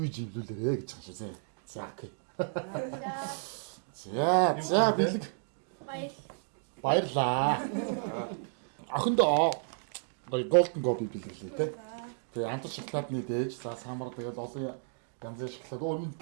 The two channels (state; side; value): silent; left; digital silence